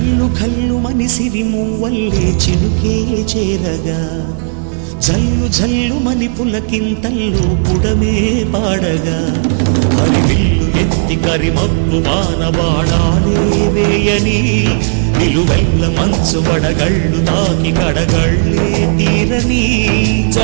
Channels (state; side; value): silent; left; digital silence